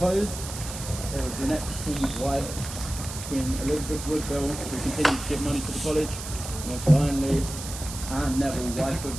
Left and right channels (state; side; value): noise; right; hiss, 9 dB below the sound